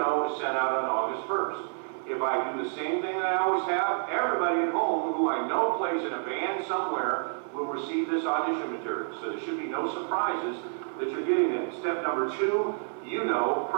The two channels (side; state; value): left; silent; 58 dB below the other